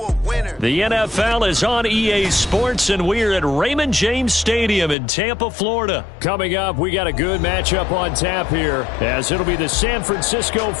winner? The NFL is on EA Sports, and we're at Raymond James Stadium in Tampa, Florida. Coming up, we got a good matchup on tap here, as it'll be the San Francisco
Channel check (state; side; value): drops out; right; at 5.0 s